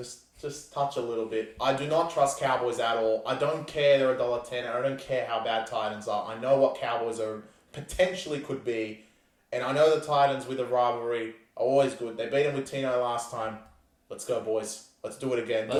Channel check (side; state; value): both; identical; correlation 1.00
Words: touch a little bit. I do not trust Cowboys at all. I don't care they're $1.10. I don't care how bad Titans are. I know what Cowboys are potentially could be. And I know the Titans with a rivalry are always good. They beat them with Tino last time. Let's go, boys. Let's do it again.